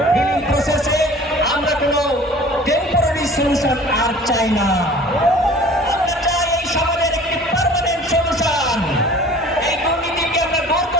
হিলিং প্রসেসে আমরা কোনো টেম্পোরারি সলিউশন আর চাই না, আমরা চাই এই সমাজের একটি পার্মানেন্ট সলিউশন। এই দুর্নীতিকে আমরা দূর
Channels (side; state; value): both; normal; correlation 0.46